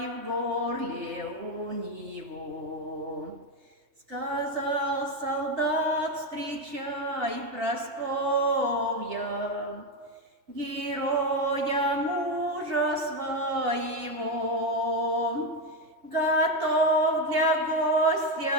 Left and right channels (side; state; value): left; late; 3.3 ms